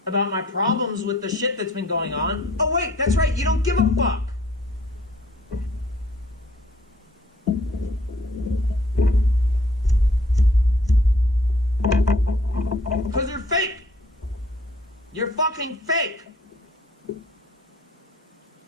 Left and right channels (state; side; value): normal; both; correlation 0.58